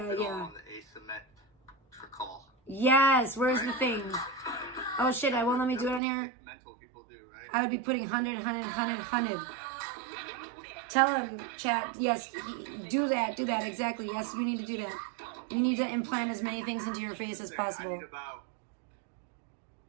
asymmetrical. Yes, where's the thing? Oh shit, I won't let me do it on here. Mental people do, right? I would be putting 100. Tell him, chat, yes, do that, exactly. Yes, you need to do that. You need to implant as many things into your face as possible.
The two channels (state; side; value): drops out; left; at 6.0 s